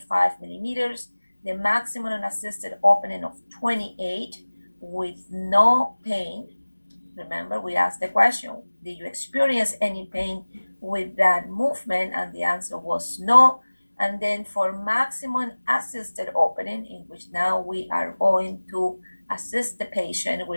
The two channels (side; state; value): both; inverted; correlation -1.00